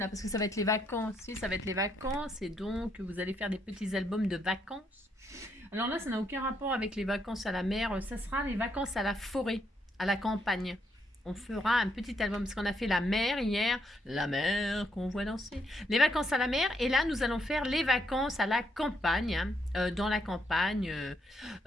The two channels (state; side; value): normal; both; correlation 0.75